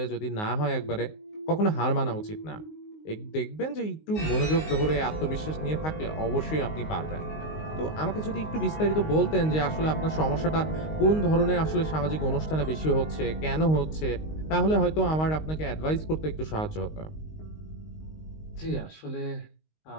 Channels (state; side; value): late; right; 19 ms